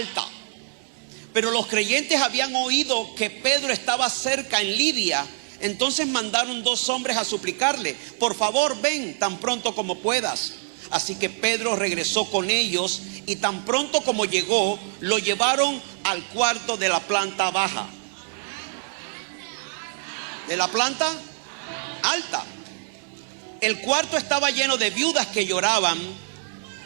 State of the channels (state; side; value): silent; left; 62 dB below the other